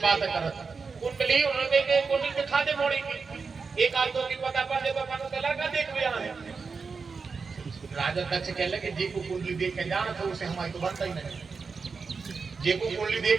करत। कुंडली उन्होंने के कुंडली दिखा दे मोड़ी की, एक आदमी की पता पड़ जाए तो अपन को लड़का देख भी आए। राजा दक्ष कह लगे जी को कुंडली देख के जाना था उसे हमारी तो बनता ही नहीं, जे को कुंडली देख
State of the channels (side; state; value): left; quieter; 4.9 dB